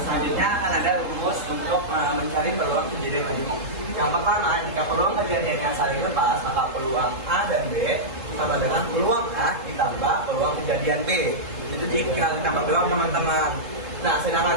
selanjutnya akan ada rumus untuk mencari peluang kejadian majemuk. Yang pertama, jika peluang kejadian yang saling lepas, maka peluang A dan B sama dengan peluang A ditambah peluang kejadian B. Itu jika kita peluang teman-teman. Nah,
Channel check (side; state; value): left; late; 3.7 ms